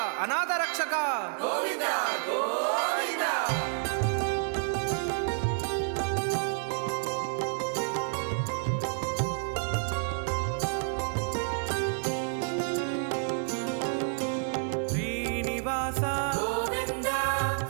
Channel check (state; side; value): silent; left; digital silence